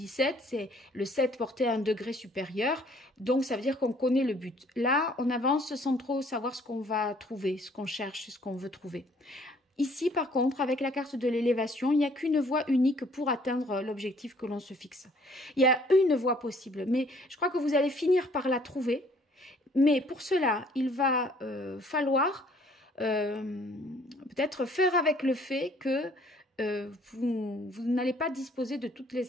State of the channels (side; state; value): both; normal; correlation 0.60